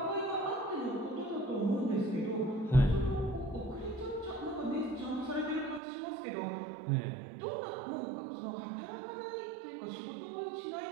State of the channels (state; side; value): drops out; left; at 5.8 s